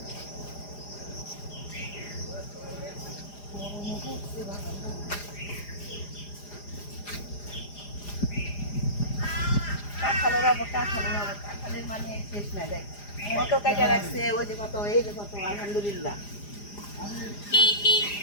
কাঁঠালের মানে শেষ নাই। দেখ কত কাটা রাখছে, ওই যে কত, এই যে কত, আলহামদুলিল্লাহ।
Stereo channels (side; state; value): right; late; 4.9 ms